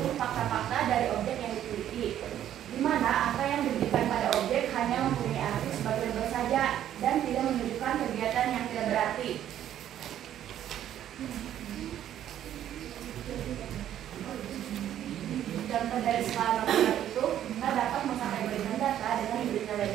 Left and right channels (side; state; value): left; quieter; 11.1 dB